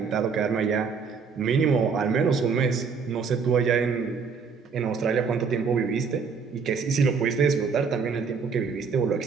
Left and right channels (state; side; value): quieter; left; 5.6 dB